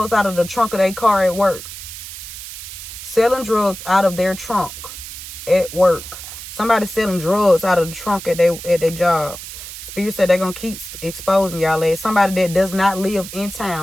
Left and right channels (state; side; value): noise; right; hiss, 11 dB below the sound